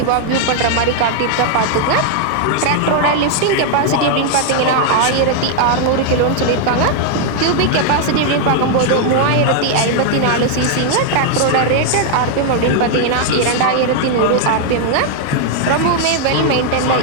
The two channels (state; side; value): different; both; correlation 0.00